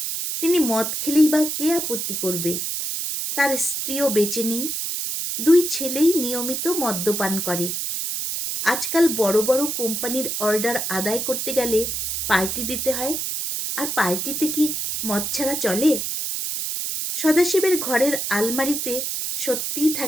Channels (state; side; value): noise; right; hiss, 2 dB below the sound